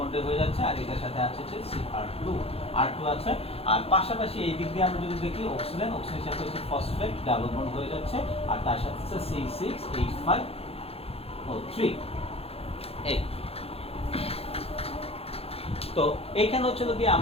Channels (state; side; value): late; right; 0.29 ms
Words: হয়ে যাচ্ছে, আর এটার সাথে আছে হচ্ছে R2 আছে। আর পাশাপাশি এই দিক দিয়ে আমরা যদি দেখি অক্সিজেন, অক্সিজেনের সাথে হচ্ছে ফসফেট ডাবল বন্ড হয়ে যাচ্ছে, আর তার সাথে হচ্ছে C6H5O3। এই তো এইখানে হচ্ছে গিয়ে